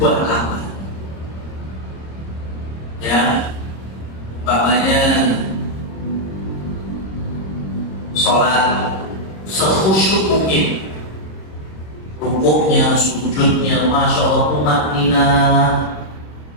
amal. Ya, umpamanya sholat sekhusyuk mungkin, rukuknya, sujudnya, masya Allah tumakninah,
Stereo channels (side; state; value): right; late; 26 ms